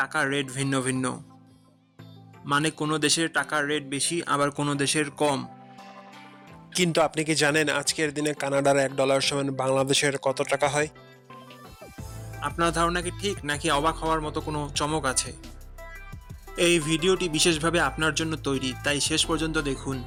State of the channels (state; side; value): identical; both; correlation 1.00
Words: রেট ভিন্ন ভিন্ন। মানে কোনো দেশের টাকার রেট বেশি, আবার কোনো দেশের কম। কিন্তু আপনি কি জানেন আজকের দিনে কানাডার $1 সমান বাংলাদেশের কত টাকা হয়? আপনার ধারণা কি ঠিক, নাকি অবাক হওয়ার মতো কোনো চমক আছে? এই ভিডিওটি বিশেষভাবে আপনার জন্য তৈরি, তাই শেষ পর্যন্ত দেখুন।